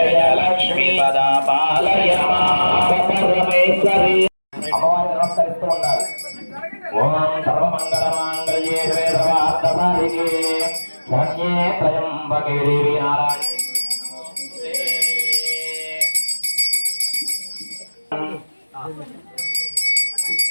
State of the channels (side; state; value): both; inverted; correlation -1.00